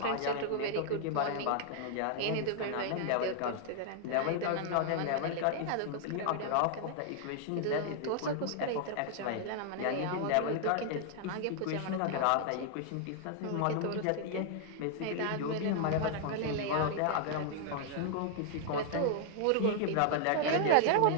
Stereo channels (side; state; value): both; different; correlation 0.00